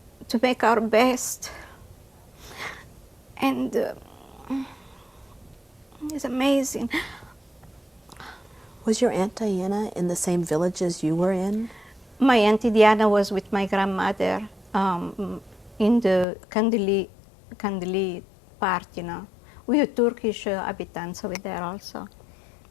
make our best. And it's amazing. Was your Aunt Diana in the same village as you were in? My Auntie Diana was with my grandmother in the Kandili part, you know. We had Turkish inhabitants over there also.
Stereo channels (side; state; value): right; drops out; at 16.2 s